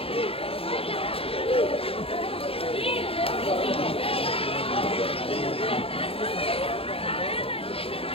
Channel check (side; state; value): right; late; 0.27 ms